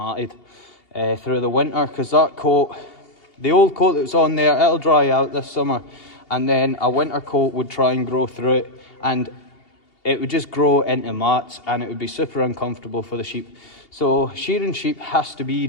through the winter, because that coat, the old coat that was on there, it'll dry out this summer, and then a winter coat would try and grow through it, and it would just grow into mats, and it would be super uncomfortable for the sheep. So shearing sheep has to be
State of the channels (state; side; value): late; right; 2.8 ms